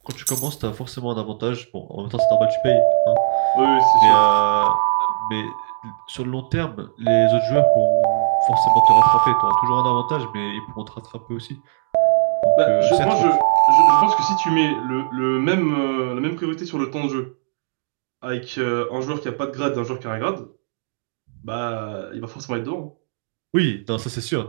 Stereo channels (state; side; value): silent; left; digital silence